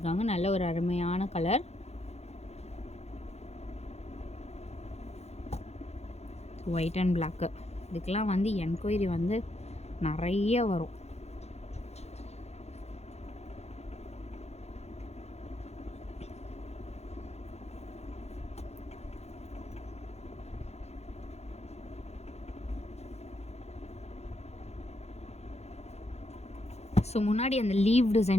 நல்ல ஒரு அருமையான கலர். White and block. இதுக்கெல்லாம் வந்து என்கொயரி வந்து நிறைய வரும். ஸோ முன்னாடி அந்த லீவ்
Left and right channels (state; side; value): late; right; 0.31 ms